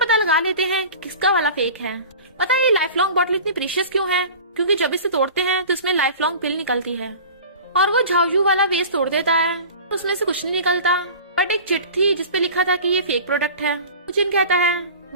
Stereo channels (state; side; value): inverted; both; correlation -0.38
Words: लगा लेते हैं कि किसका वाला फेक है। पता है ये लाइफ लॉन्ग बॉटल इतनी प्रीशियस क्यों है? क्योंकि जब इसे तोड़ते हैं तो इसमें लाइफ लॉन्ग पिल निकलती है और वो झाओयू वाला वेस्ट तोड़ देता है तो उसमें से कुछ नहीं निकलता, बट एक चिट थी जिसपे लिखा था कि ये फेक प्रोडक्ट है। जिन कहता है